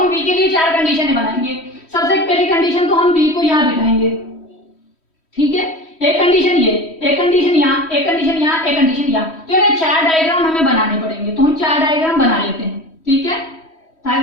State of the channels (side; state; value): right; late; 3.1 ms